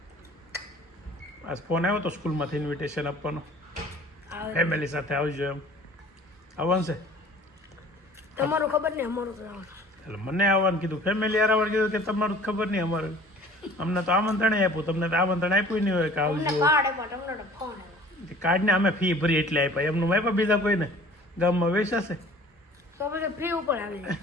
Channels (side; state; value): both; normal; correlation 0.48